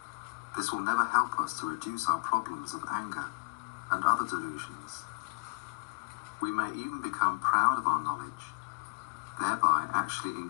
this will never help us to reduce our problems of anger and other delusions. We may even become proud of our knowledge, thereby actually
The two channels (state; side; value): quieter; right; 33.8 dB